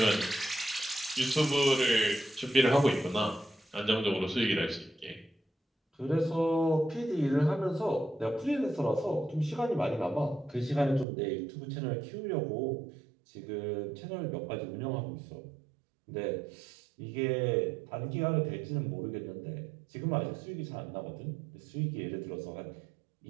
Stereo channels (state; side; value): drops out; left; at 11.1 s